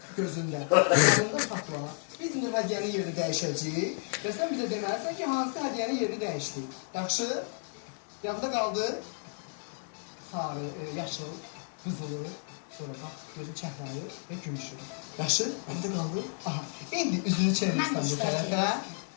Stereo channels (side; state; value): right; silent; 57 dB below the other